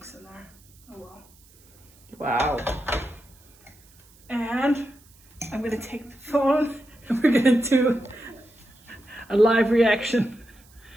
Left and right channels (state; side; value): noise; right; hiss, 28 dB below the sound